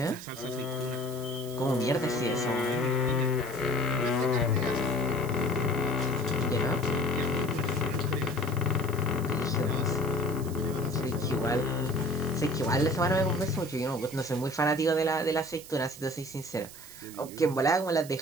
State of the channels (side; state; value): right; noise; hiss, 16 dB below the sound